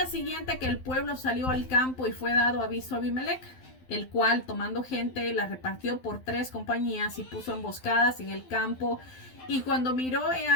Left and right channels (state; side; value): late; right; 12 ms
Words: siguiente que el pueblo salió al campo, y fue dado aviso a Abimelech, el cual, tomando gente, la repartió por 3 compañías y puso emboscadas en el campo. Y cuando miró, he